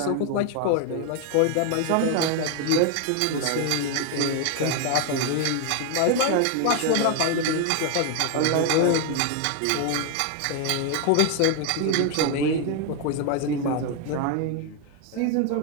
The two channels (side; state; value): both; different; correlation 0.01